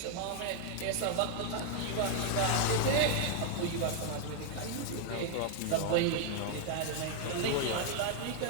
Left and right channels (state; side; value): different; both; correlation 0.00